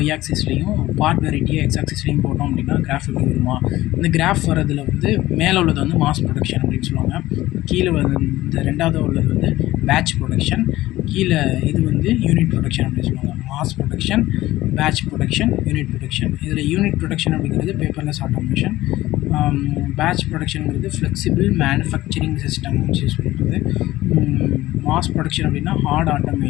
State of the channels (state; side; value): quieter; right; 16.6 dB